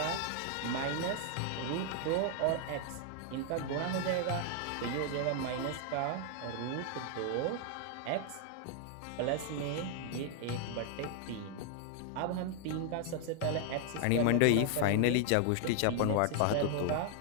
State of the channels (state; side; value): different; both; correlation 0.00